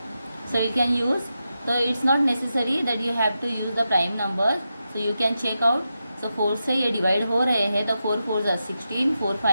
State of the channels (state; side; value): inverted; both; correlation -0.89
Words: So we can use, so it's not necessary that you have to use the prime numbers, so you can check out. So 4 से ये divide हो रहे हैं, तो 4 4 जा 16, 4